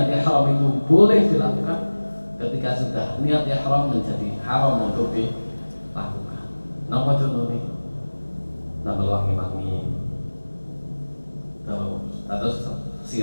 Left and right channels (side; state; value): both; inverted; correlation -1.00